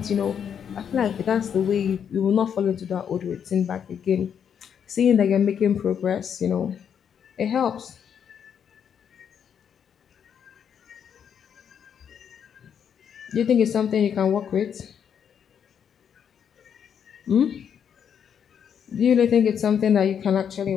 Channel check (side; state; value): right; quieter; 8.0 dB